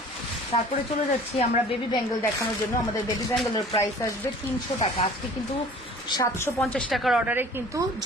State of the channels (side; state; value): both; normal; correlation 0.47